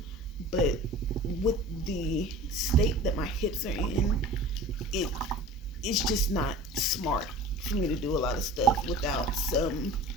But with the state that my hips are in, it's just not smart for me to do a lot of stuff without some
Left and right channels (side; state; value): both; normal; correlation 0.40